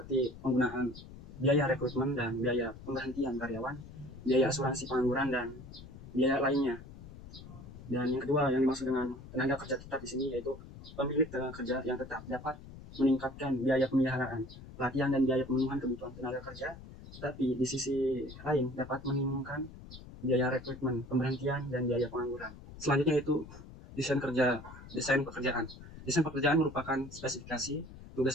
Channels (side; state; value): left; noise; rumble, 15 dB below the sound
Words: penggunaan biaya rekrutmen dan biaya pemberhentian karyawan, biaya asuransi pengangguran, dan biaya lainnya. Dan yang kedua yang dimaksud dengan tenaga kerja tetap di sini yaitu pemilik tenaga kerja yang tetap dapat meningkatkan biaya pemeliharaan, pelatihan, dan biaya pemenuhan kebutuhan tenaga kerja, tetapi di sisi lain dapat menimbulkan biaya rekrutmen, pemberhentian, dan biaya pengangguran. Selanjutnya yaitu desain pekerjaan. Desain pekerjaan merupakan spesifikasi